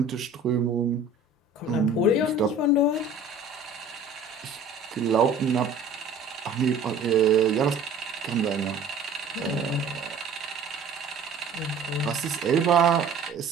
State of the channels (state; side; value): quieter; left; 3.6 dB